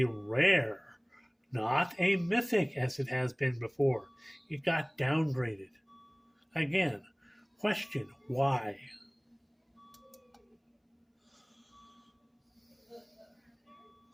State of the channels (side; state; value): both; identical; correlation 1.00